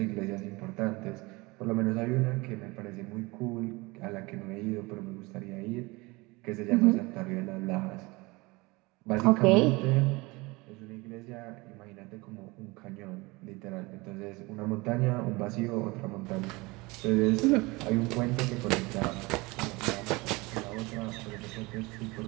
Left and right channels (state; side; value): quieter; left; 23.9 dB